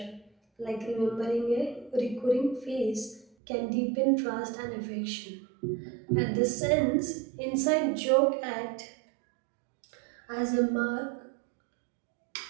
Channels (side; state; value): left; drops out; at 3.2 s